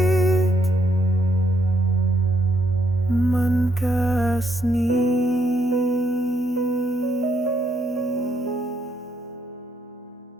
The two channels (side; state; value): both; normal; correlation 0.73